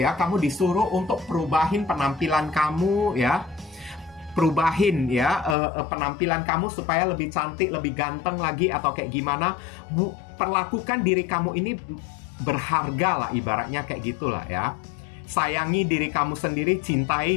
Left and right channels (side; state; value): right; drops out; at 5.6 s